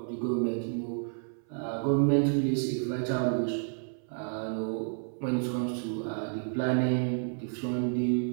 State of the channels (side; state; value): left; silent; 57 dB below the other